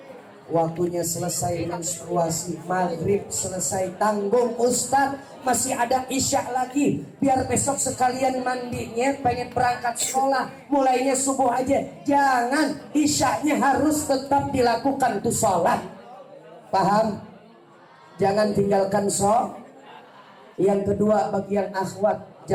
waktunya selesai menstruasi, maghrib selesai, tanggung Ustaz, masih ada isya lagi, biar besok sekalian mandinya, pengen berangkat sekolah, mulainya subuh aja. Jangan, isyanya harus tetap dilakukan tuh sholat. Paham? Jangan tinggalkan Yang kedua, bagi yang akhwat,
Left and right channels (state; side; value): identical; both; correlation 1.00